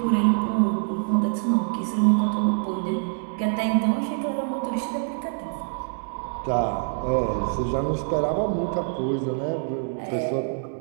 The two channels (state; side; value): silent; left; 62 dB below the other